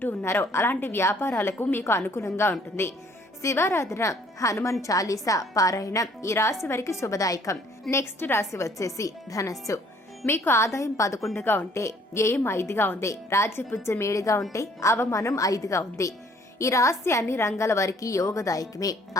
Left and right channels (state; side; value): normal; both; correlation 0.60